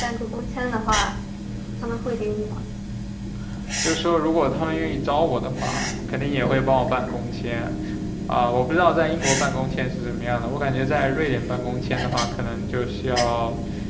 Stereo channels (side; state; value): both; identical; correlation 1.00